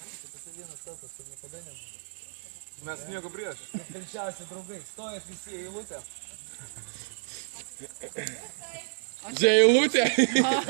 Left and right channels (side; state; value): left; silent; 57 dB below the other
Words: Mes nieko prieš. Pilčiausi draugai, stojat visi į eilutę. Čia eilutė.